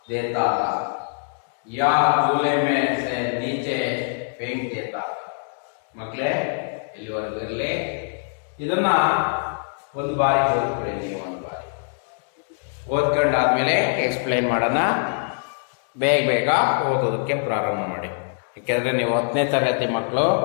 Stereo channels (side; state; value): right; silent; digital silence